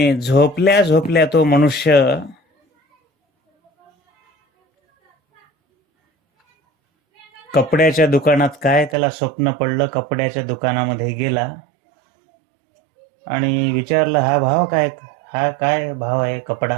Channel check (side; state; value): left; drops out; at 9.0 s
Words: झोपल्या झोपल्या तो मनुष्य कपड्याच्या दुकानात, काय त्याला स्वप्न पडलं, कपड्याच्या दुकानामध्ये गेला आणि विचारलं, हा काय भाव आहे